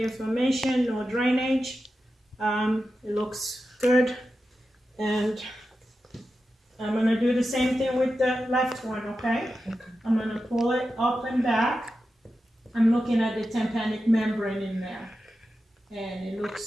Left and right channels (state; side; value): normal; both; correlation 0.91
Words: inflammation, no drainage. It looks good. And I'm gonna do the same thing with the left one, okay? Okay. I'm gonna pull it up and back. I'm looking at the tympanic membrane in there, and it